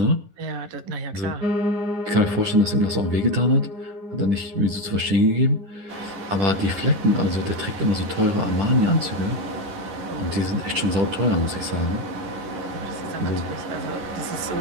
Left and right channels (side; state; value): left; late; 10 ms